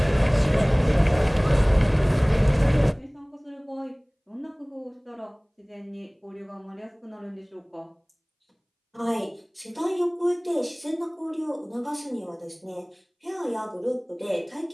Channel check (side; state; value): both; identical; correlation 1.00